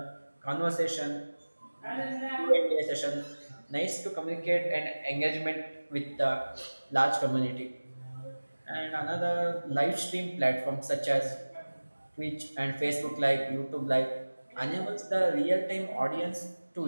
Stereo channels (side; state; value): both; inverted; correlation -1.00